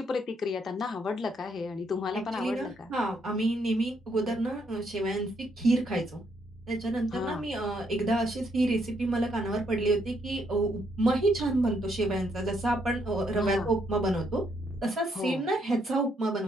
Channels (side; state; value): both; normal; correlation 0.73